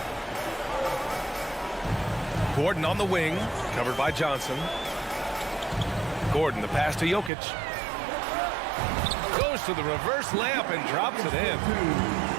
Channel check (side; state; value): left; drops out; at 7.3 s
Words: Gordon on the wing, covered by Johnson. Gordon, the pass to Jokic. Goes to the reverse layup and drops it in.